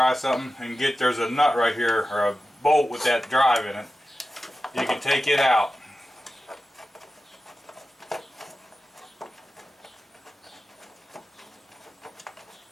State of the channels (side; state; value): both; normal; correlation 0.94